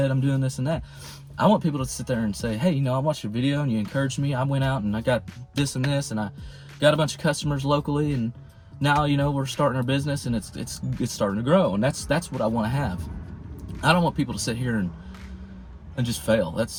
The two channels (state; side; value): identical; both; correlation 1.00